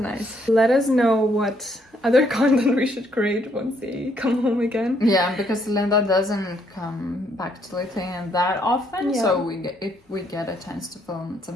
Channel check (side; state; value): both; normal; correlation 0.70